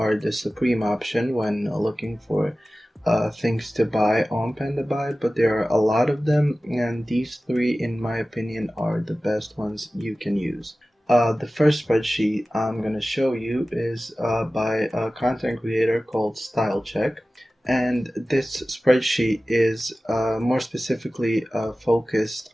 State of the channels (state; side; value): normal; both; correlation 0.96